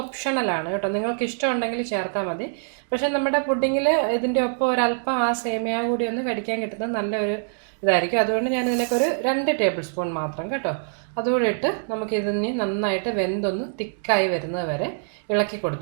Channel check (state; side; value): silent; left; digital silence